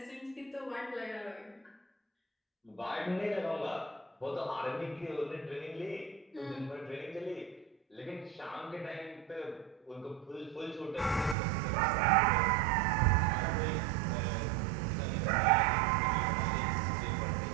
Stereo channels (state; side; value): drops out; left; at 11.4 s